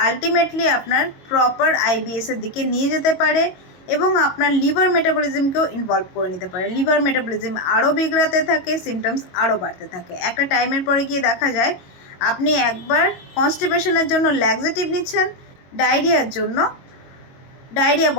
আলটিমেটলি আপনার প্রপার আইবিএসের দিকে নিয়ে যেতে পারে এবং আপনার লিভার মেটাবলিজমকেও ইনভলভ করে নিতে পারে। লিভার মেটাবলিজম আরও বিগড়াতে থাকে, সিমটমস আরও বাড়তে থাকে। একটা টাইমের পরে গিয়ে দেখা যায় আপনি একবার কনস্টিপেশনের জন্য ল্যাক্সেটিভ নিচ্ছেন, ডায়রিয়ার জন্য ডায়রিয়া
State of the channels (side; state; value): right; late; 22 ms